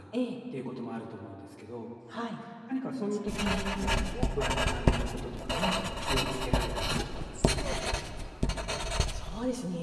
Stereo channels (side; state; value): both; identical; correlation 1.00